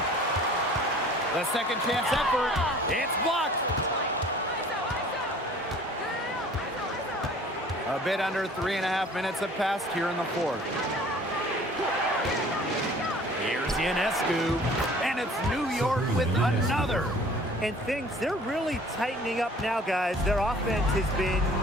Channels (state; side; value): normal; both; correlation 0.50